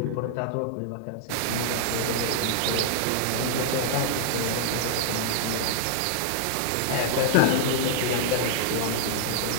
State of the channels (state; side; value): different; both; correlation -0.01